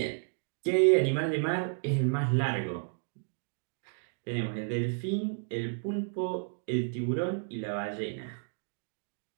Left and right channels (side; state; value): left; silent; digital silence